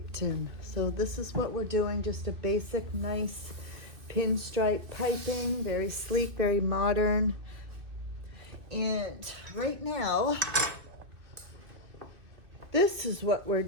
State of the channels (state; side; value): late; left; 2.6 ms